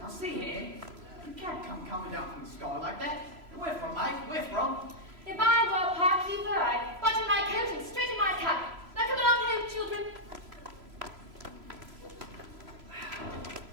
see here, you can't come coming down from the sky like that. Where from, mate? Where from? If I were a parky bird, button my coat and straighten my cap. Now come along home, children.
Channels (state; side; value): late; left; 3.0 ms